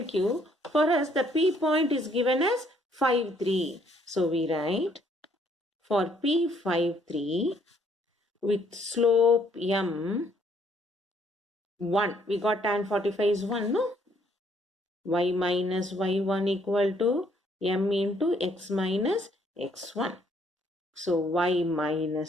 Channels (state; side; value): normal; both; correlation 0.66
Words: Q, for us the P point is given as 5, 3. So we write for P 5, 3 with slope M 1. We got tan 45 is 1, no? Y minus y1 equal to M into x minus x1. So y